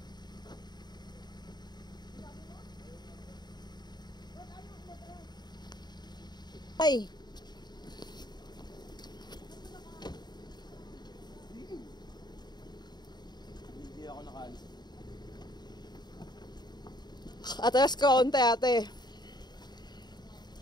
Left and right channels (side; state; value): right; late; 0.20 ms